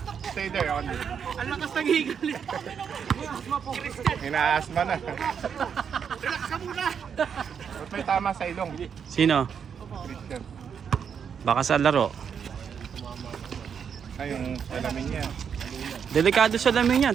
stay there. On. Ang lakas ng higal. Inaasma na. Relax ka muna. Ba't may tama sa ilong? Sino? Christian. Baka sa laro. Ay, yung salamin niya. Delikado sa lamin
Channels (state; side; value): quieter; left; 7.3 dB